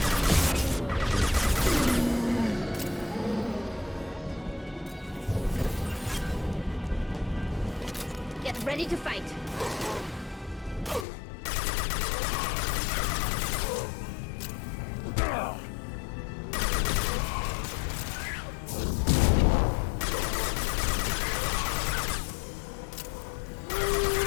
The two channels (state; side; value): drops out; right; at 11.1 s